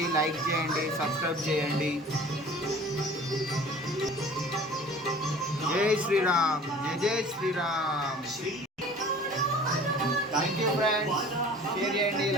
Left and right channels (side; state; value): both; normal; correlation 0.46